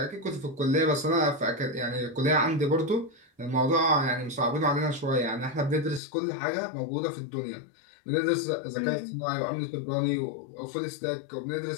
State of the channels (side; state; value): right; drops out; at 6.0 s